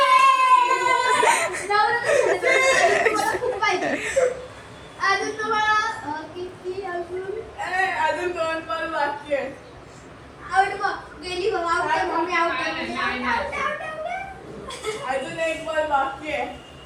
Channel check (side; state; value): both; identical; correlation 1.00